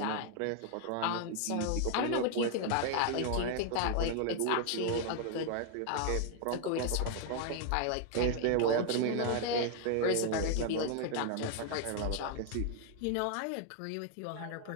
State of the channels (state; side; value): different; both; correlation 0.00